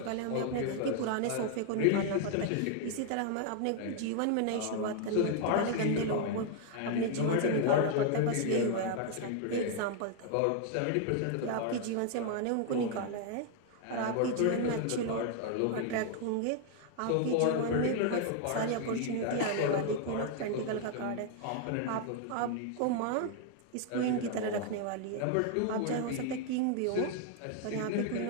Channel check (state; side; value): different; both; correlation 0.00